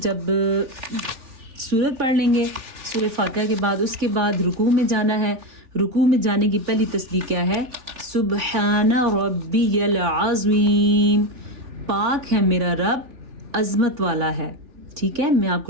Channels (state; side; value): late; left; 3.6 ms